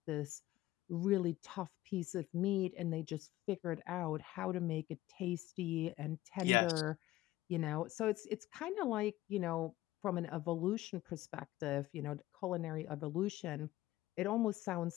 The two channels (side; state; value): right; quieter; 16.3 dB